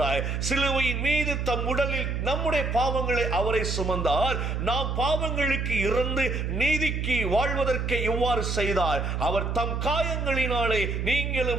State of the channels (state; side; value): noise; right; hum, 1 dB below the sound